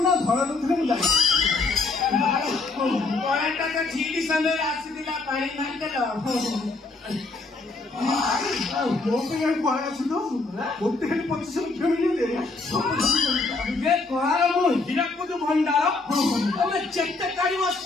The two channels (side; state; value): right; quieter; 3.6 dB